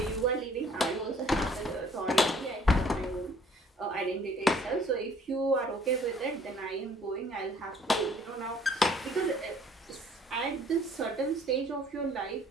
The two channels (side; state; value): both; normal; correlation 0.58